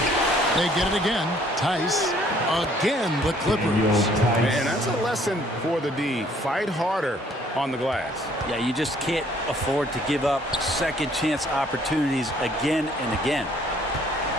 They get it again. Tice. Again, the Clippers. And that's a lesson for the D. Fight harder on the glass. Yeah, you just can't afford to give up second chance opportunities again and again.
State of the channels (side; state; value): both; normal; correlation 0.61